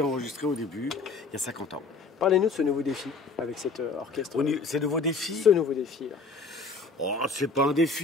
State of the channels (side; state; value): right; quieter; 4.3 dB